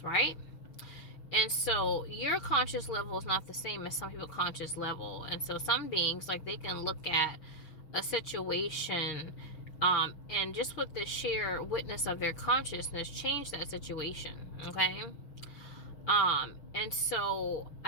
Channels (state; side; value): late; right; 6.0 ms